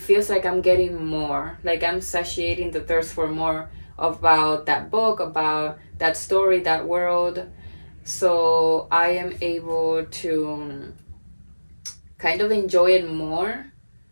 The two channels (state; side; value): inverted; both; correlation -1.00